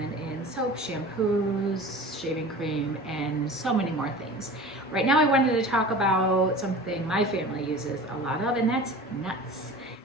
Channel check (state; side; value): normal; both; correlation 0.38